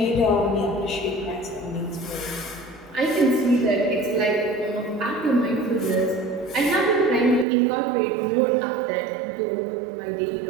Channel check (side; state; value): left; drops out; at 7.5 s